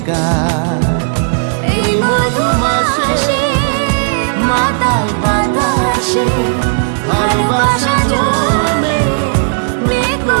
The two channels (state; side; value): silent; left; digital silence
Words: গা। এই মধুমাসে মাতাল বাতাসে ভালোবাসা জমে মেঘ